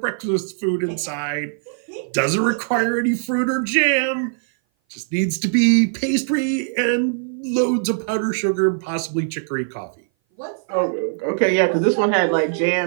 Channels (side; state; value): left; silent; 59 dB below the other